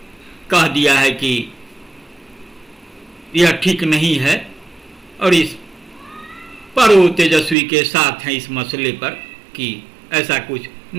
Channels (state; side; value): drops out; left; at 7.6 s